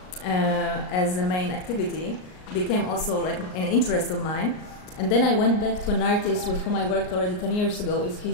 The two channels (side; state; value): right; late; 38 ms